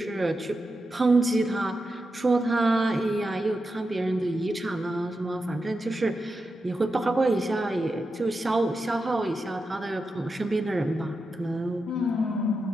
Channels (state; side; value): normal; both; correlation 0.89